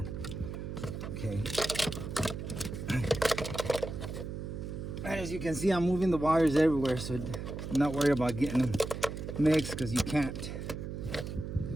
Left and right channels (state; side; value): noise; right; hum, 6 dB below the sound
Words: Okay. And as you can see, I'm moving the wires everywhere, so I'm not worried about getting them mixed, because you can't.